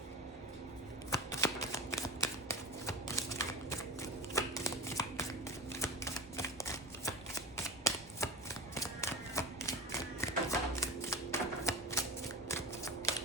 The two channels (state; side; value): normal; both; correlation 0.29